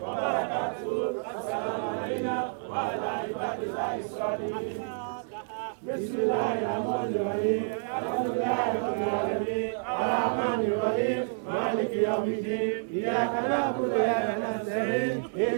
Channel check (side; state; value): left; silent; digital silence